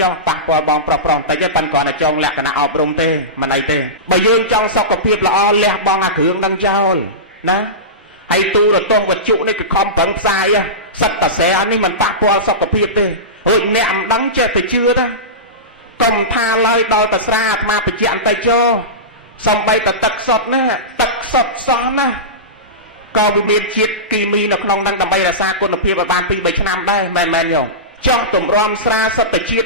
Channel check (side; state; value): both; normal; correlation -0.19